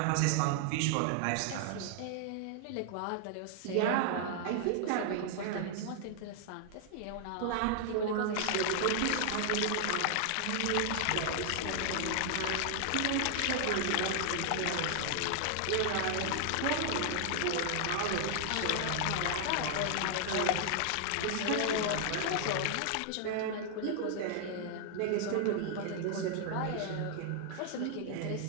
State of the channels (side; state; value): both; different; correlation 0.00